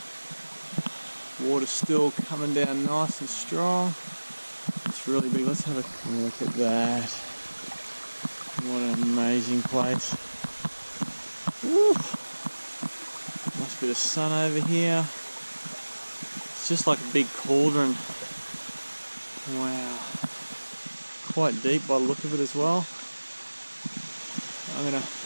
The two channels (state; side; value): inverted; both; correlation -1.00